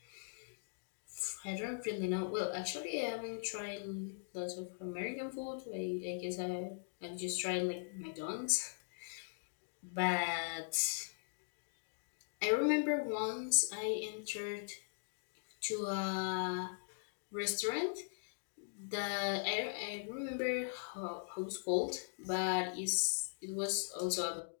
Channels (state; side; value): silent; right; digital silence